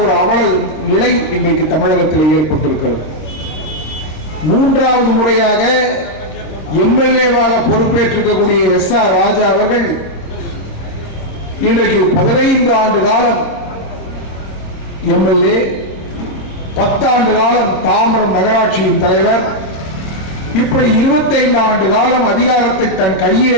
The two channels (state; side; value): late; right; 26 ms